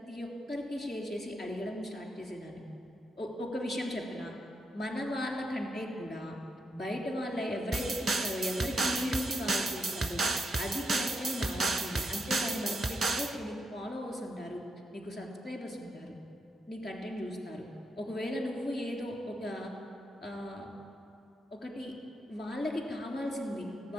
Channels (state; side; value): normal; both; correlation 0.82